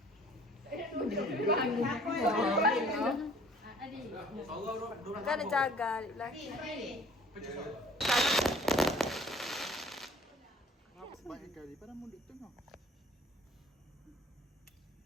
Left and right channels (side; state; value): both; normal; correlation 0.52